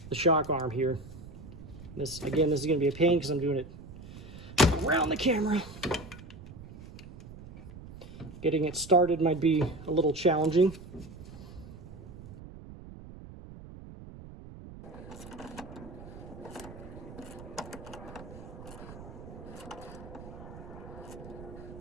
the shock arm here. This, again, this is going to be a pain because I'm doing it around the camera. Getting it started might be a little challenging.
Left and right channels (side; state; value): right; noise; rumble, 15 dB below the sound